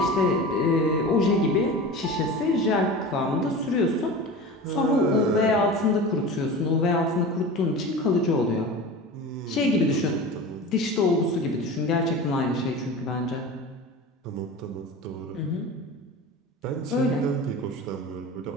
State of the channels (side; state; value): both; normal; correlation 0.32